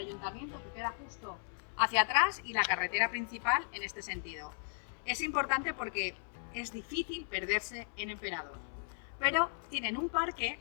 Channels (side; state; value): right; silent; 54 dB below the other